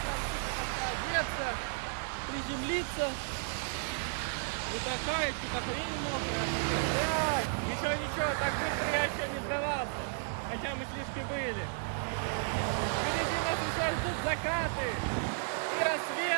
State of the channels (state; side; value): silent; left; digital silence